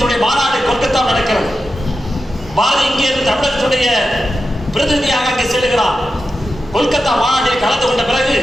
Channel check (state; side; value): normal; both; correlation 0.90